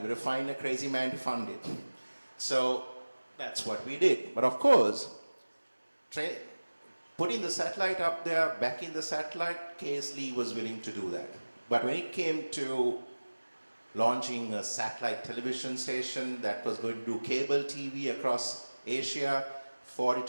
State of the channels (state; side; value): inverted; both; correlation -1.00